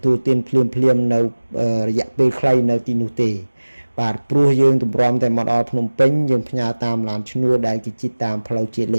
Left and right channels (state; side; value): inverted; both; correlation -1.00